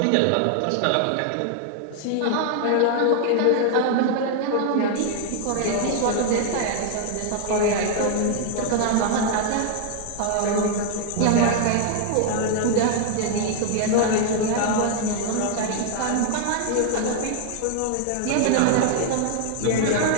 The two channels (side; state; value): both; different; correlation 0.00